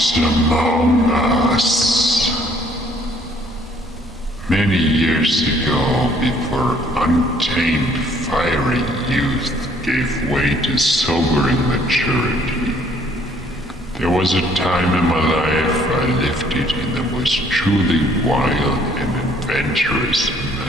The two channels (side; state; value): both; normal; correlation 0.62